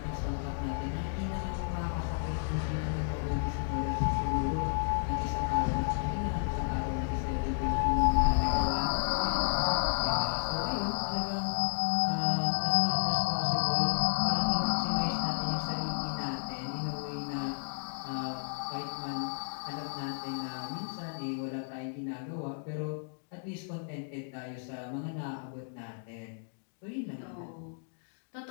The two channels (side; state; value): right; silent; digital silence